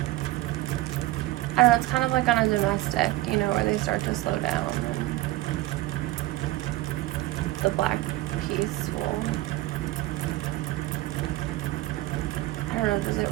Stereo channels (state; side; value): quieter; left; 17.7 dB